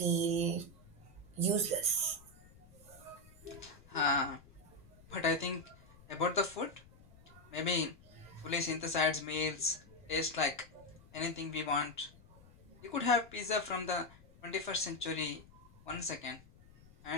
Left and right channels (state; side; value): noise; left; rumble, 23 dB below the sound